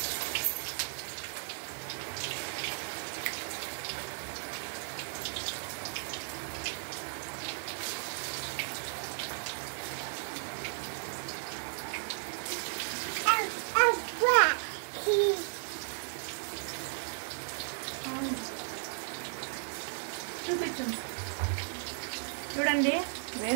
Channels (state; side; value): silent; left; digital silence